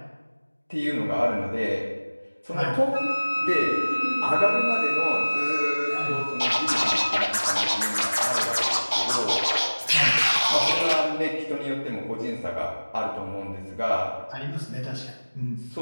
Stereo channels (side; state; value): both; inverted; correlation -1.00